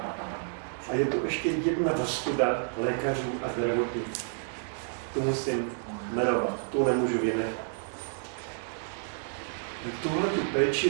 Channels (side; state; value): left; silent; 55 dB below the other